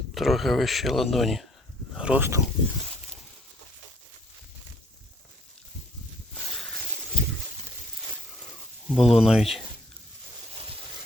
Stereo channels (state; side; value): normal; both; correlation 0.64